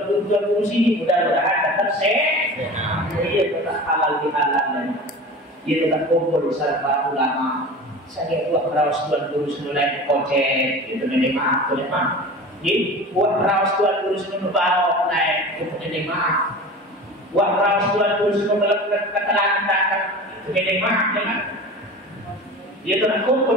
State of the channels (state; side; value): normal; both; correlation 0.35